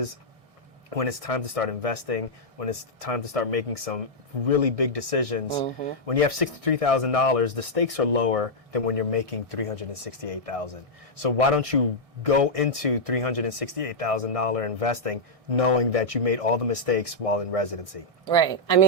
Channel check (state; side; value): late; left; 1.6 ms